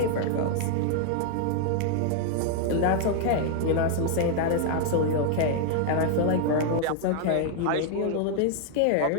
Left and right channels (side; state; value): both; different; correlation 0.00